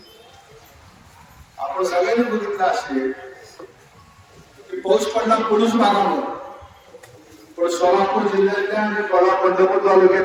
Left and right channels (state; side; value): identical; both; correlation 1.00